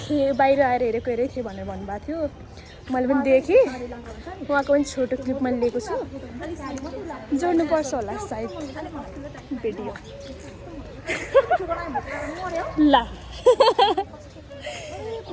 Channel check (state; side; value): identical; both; correlation 1.00